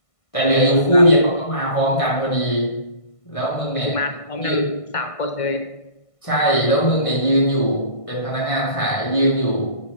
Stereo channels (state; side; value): late; right; 1.5 ms